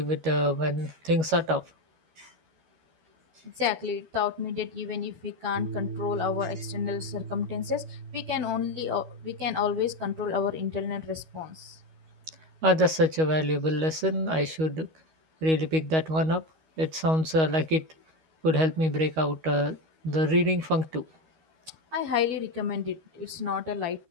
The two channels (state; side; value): late; left; 13 ms